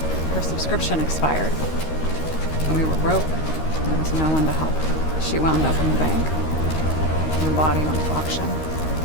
her subscription expired. And we were broke. There was no one to help. She wound up in the bank. And the body went to auction.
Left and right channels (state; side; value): late; right; 13 ms